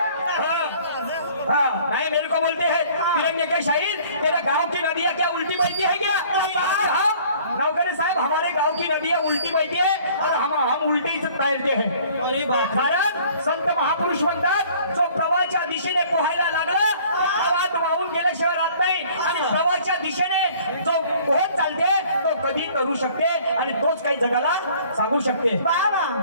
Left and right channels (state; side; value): inverted; both; correlation -0.53